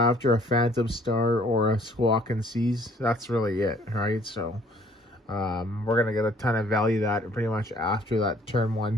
a Phantom Star or a Squawk and Seize, that's really it, right? So we're going to get a ton of value that pretty much after that turn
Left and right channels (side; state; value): both; normal; correlation 0.59